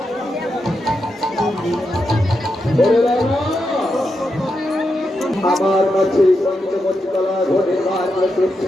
আমার কাছে পঞ্চমতলা ঘটে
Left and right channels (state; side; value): normal; both; correlation 0.86